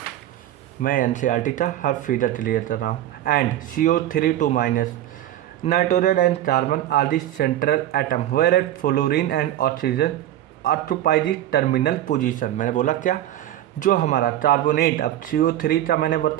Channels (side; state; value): left; quieter; 12.8 dB